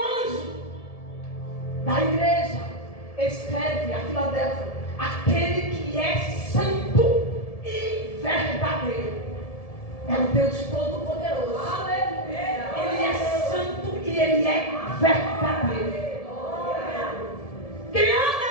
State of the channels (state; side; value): late; right; 1.7 ms